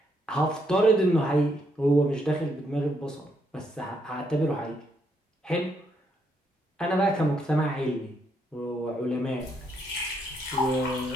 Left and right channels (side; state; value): both; normal; correlation 0.75